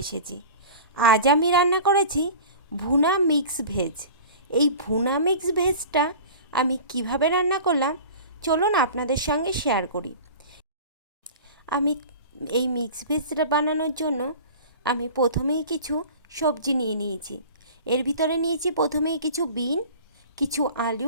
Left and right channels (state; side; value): inverted; both; correlation -0.39